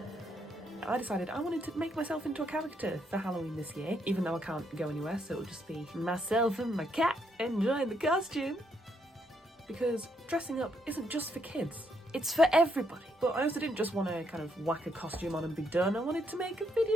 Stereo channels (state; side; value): normal; both; correlation 0.75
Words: I decided I wanted to make myself into a character for Halloween this year, even though I can't go anywhere, so it'll just be myself and my cat enjoying the costume. Because dressing up isn't just for kids, it's for everybody. But I also didn't just want to kind of whack a costume on and be done. I wanted to make a